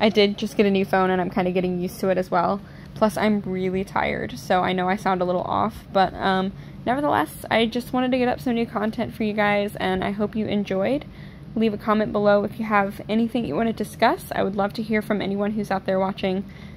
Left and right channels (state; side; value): identical; both; correlation 1.00